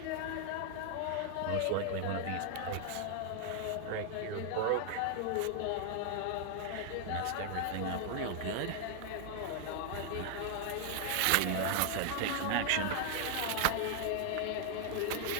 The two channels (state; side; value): different; both; correlation 0.00